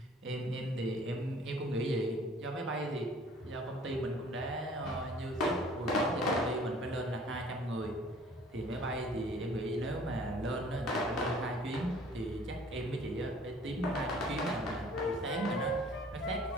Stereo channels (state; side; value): normal; both; correlation 0.52